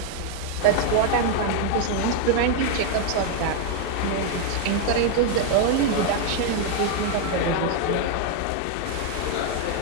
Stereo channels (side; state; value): both; different; correlation 0.01